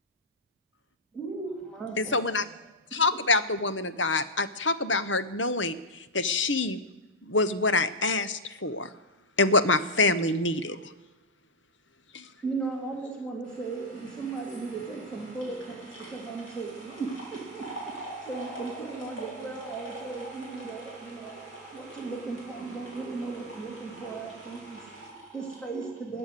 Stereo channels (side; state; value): both; normal; correlation -0.05